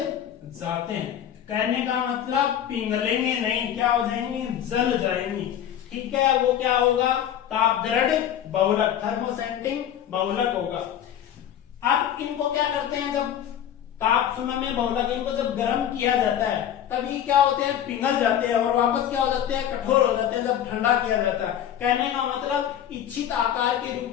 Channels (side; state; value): right; quieter; 10.2 dB